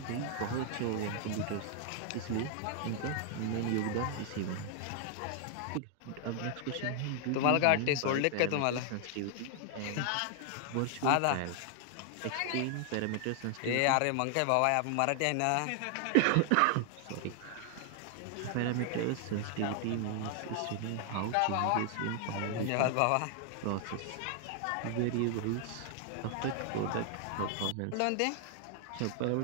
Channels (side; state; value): both; different; correlation 0.00